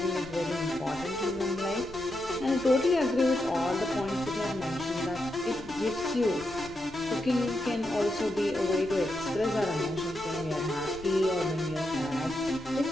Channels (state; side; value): noise; left; rumble, 19 dB below the sound